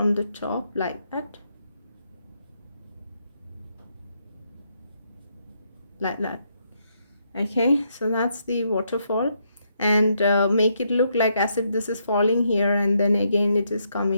the top like that, like that. Okay, so that's the waterfall, and make it look like as if this is falling here, and then again it is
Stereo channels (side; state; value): both; inverted; correlation -0.76